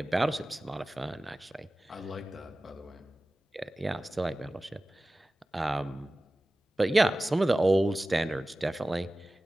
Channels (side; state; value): both; normal; correlation 0.97